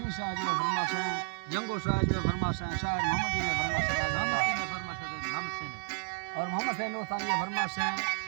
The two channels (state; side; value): silent; left; 57 dB below the other